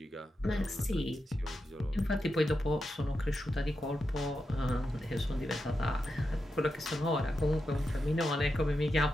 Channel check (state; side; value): normal; both; correlation 0.88